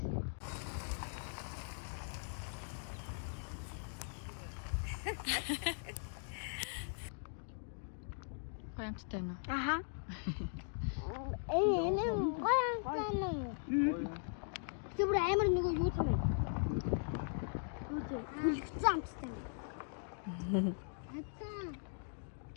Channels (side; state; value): right; silent; digital silence